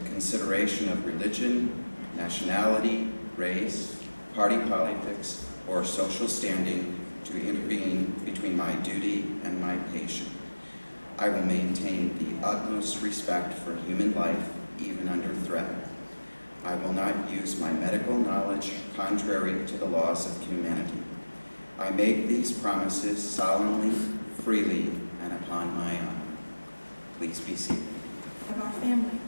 consideration of religion, nationality, race, party politics, or social standing to intervene between my duty and my patient. I will maintain the utmost respect for human life, even under threat. I will not use my medical knowledge contrary to the laws of humanity. I make these promises solemnly, freely, and upon my honor. Please be seated. Of our family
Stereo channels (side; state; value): both; inverted; correlation -1.00